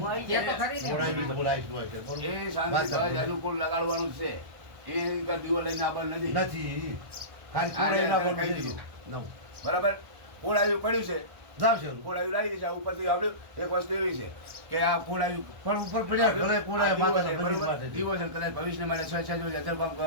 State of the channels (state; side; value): late; left; 1.3 ms